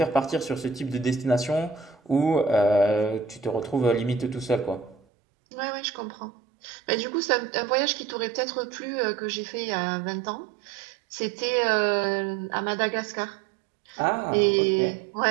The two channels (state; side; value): drops out; left; at 5.0 s